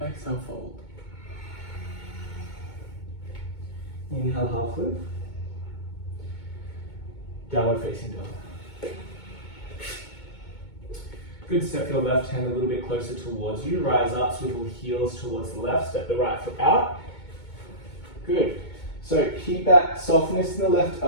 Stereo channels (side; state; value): right; late; 2.2 ms